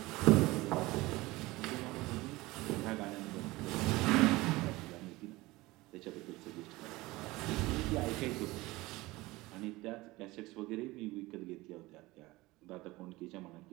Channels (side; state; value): left; quieter; 20.4 dB